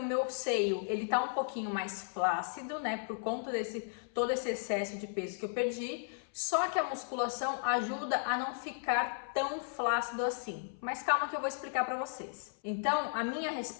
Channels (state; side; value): silent; right; 55 dB below the other